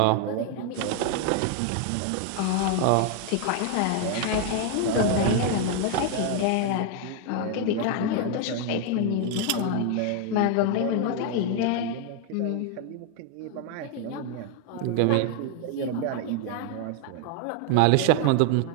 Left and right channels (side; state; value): both; different; correlation 0.01